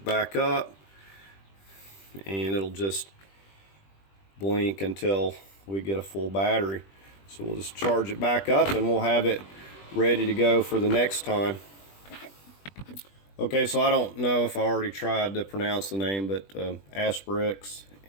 back up, and it'll just blink until we get a full battery. So we'll just charge it back up, and we'll have it ready to go for the next time. Okay, so I don't know if I already tried to pronounce the name, but Asperx,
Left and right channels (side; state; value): right; late; 20 ms